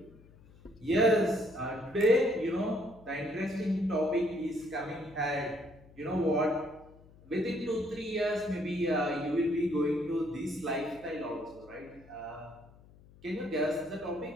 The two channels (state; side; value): noise; left; hum, 24 dB below the sound